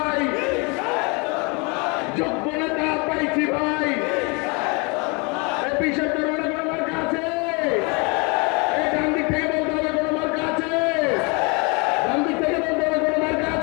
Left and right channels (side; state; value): right; quieter; 30.7 dB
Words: যোগ্য নেতা পাইছি ভাই। বিশেষ করে কোনো মার্কা আছে? এই ডান দিক থেকে বলতে হবে কোনো মার্কা আছে? ডান দিক থেকে বলতে হবে কোনো মার্কা